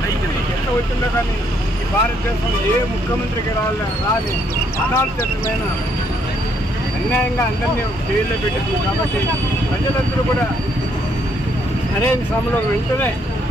ఎంత వచ్చిందో కానీ ఈ భారతదేశంలో ఏ ముఖ్యమంత్రికి రాని అనాలోచితమైన అన్యాయంగా అందరినీ జైల్లో పెట్టింది. కాబట్టి ప్రజలందరూ కూడా సరైన సమయంలో వెంటనే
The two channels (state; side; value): normal; both; correlation 0.71